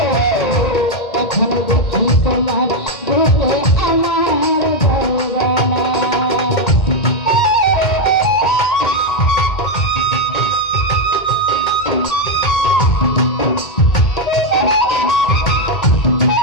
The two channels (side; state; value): right; late; 2.2 ms